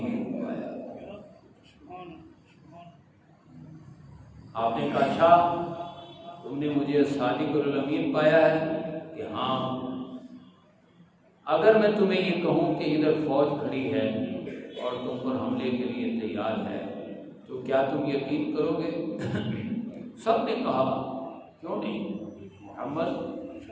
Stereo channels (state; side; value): identical; both; correlation 1.00